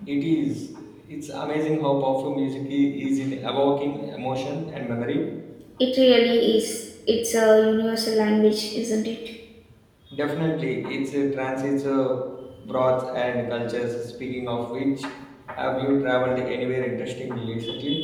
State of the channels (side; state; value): both; identical; correlation 1.00